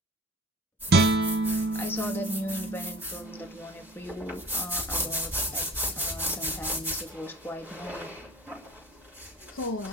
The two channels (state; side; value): normal; both; correlation 0.44